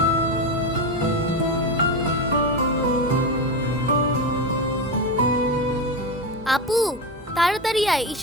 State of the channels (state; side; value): normal; both; correlation 0.16